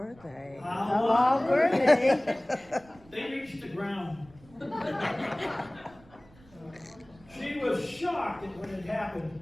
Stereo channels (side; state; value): right; noise; rumble, 26 dB below the sound